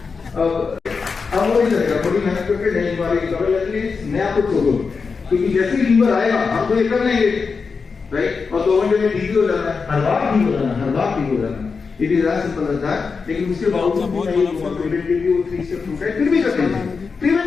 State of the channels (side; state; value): right; quieter; 5.0 dB